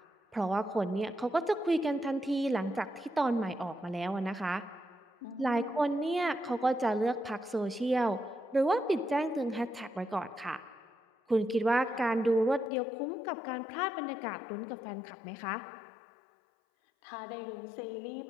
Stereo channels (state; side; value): drops out; right; at 12.7 s